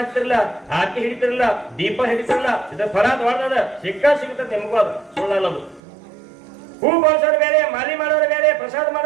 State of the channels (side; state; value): left; drops out; at 5.8 s